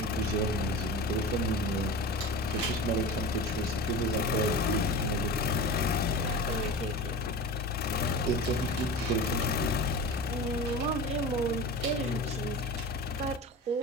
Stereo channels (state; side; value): normal; both; correlation 0.30